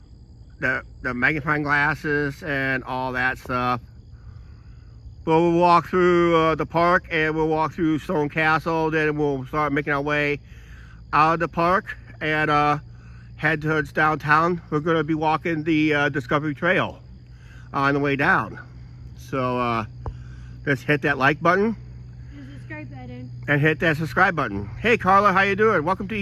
magnifying glasses and all that stuff. But we'll walk through the park, and we'll walk through Stone Castle. Then we'll start making our way out of the park and head towards downtown. We're going to be walking the Discovery Trail on the way down. So let's hit that like button. The subscribe button. And hit that subscribe button. Hey Carla, how you doing? Welcome to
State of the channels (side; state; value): both; identical; correlation 1.00